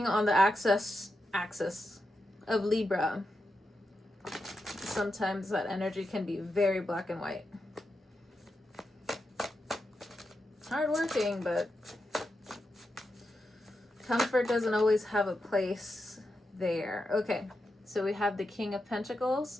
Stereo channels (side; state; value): both; normal; correlation 0.87